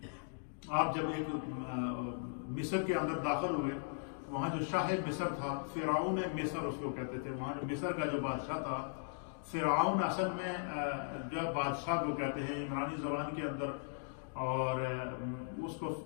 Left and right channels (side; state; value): right; silent; digital silence